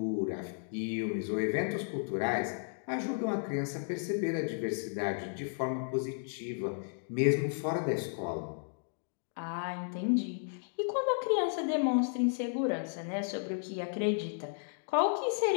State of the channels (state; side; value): silent; right; digital silence